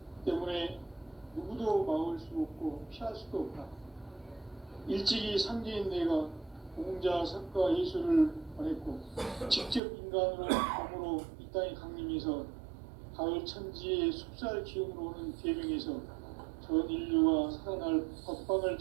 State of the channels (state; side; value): drops out; left; at 9.8 s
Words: 때문에 누구도 막을 수 없고 피할 수도 없다. 일찍이 상제인 내가 공자, 석가, 예수를 보냈고 직접 인간으로 몸으로 이 땅에 강림해서 가을 천지의 숲살 기운으로 오는 계명에서 전 인류가 살아날 법방을